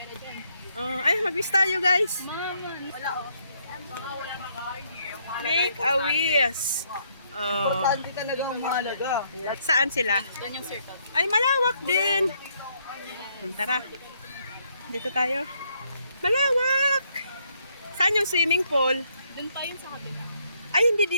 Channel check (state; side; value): inverted; both; correlation -0.71